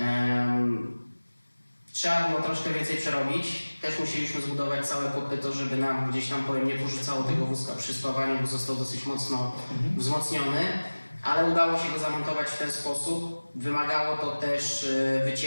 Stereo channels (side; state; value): both; inverted; correlation -1.00